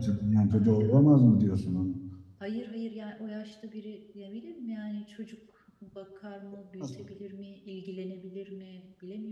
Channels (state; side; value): identical; both; correlation 1.00